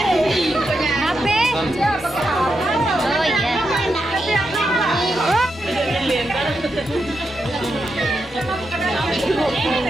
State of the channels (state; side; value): normal; both; correlation 0.85